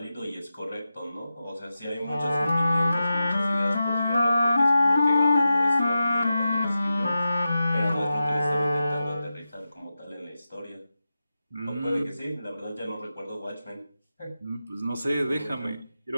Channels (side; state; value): both; inverted; correlation -0.92